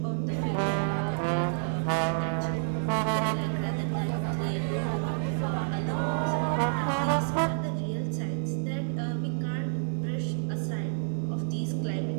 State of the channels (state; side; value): silent; left; digital silence